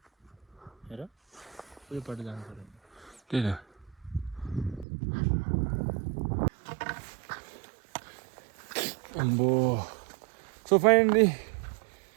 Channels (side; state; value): left; drops out; at 4.9 s